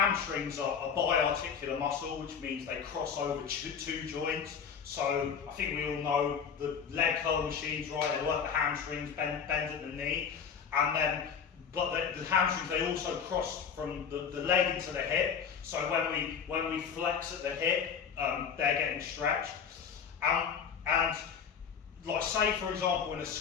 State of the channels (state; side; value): quieter; right; 7.0 dB